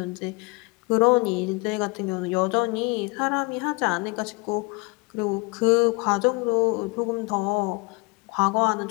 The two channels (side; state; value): right; quieter; 28.8 dB